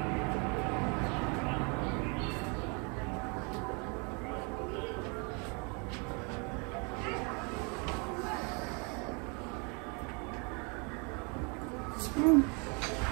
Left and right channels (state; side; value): quieter; left; 33.6 dB